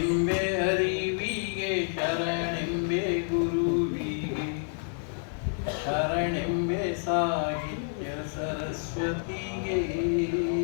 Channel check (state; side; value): silent; right; 59 dB below the other